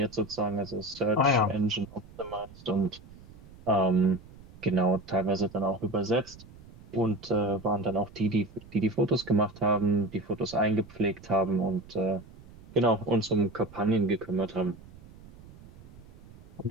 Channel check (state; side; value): noise; right; rumble, 20 dB below the sound